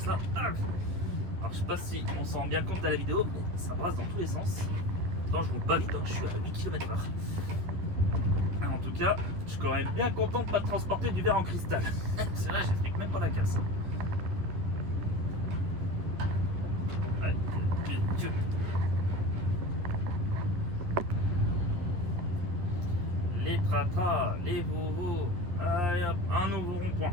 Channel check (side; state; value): left; late; 11 ms